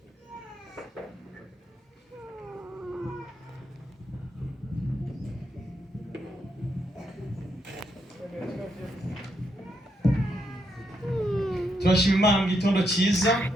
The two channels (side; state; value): both; normal; correlation 0.79